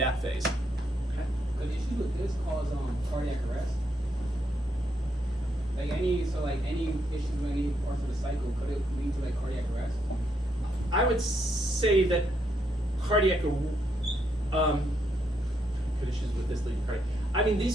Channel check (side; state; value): both; normal; correlation 0.77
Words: phase. The issue with this cause cardiac arrest. Like any issues with any parts of the cycle, could it lead to cardiac arrest? I would say that cardiac could issues with this lead cardiac. I mean,